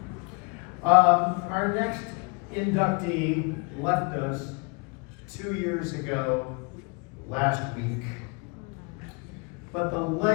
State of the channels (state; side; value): quieter; right; 32.5 dB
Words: Our next inductee left us 2 years ago, last week. But the